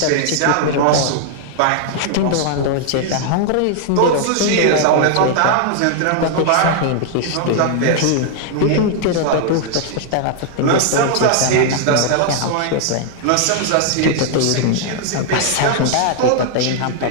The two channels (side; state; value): both; different; correlation 0.00